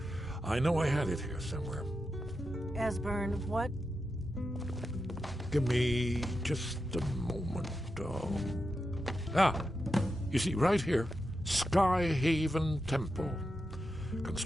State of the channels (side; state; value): both; normal; correlation 0.88